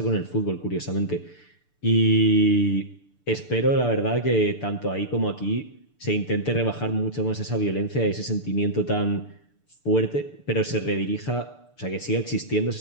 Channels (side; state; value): right; late; 6.8 ms